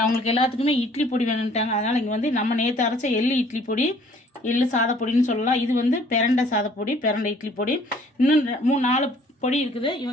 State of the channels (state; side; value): normal; both; correlation 0.57